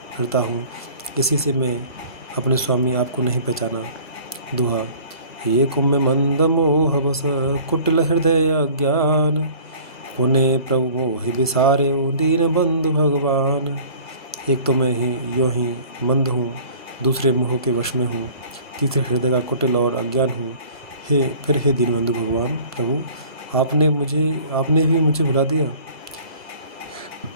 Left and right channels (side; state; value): both; inverted; correlation -0.49